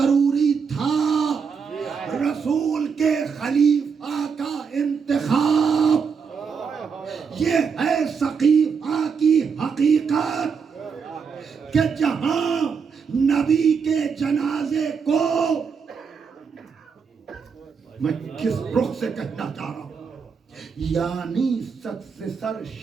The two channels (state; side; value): quieter; left; 6.0 dB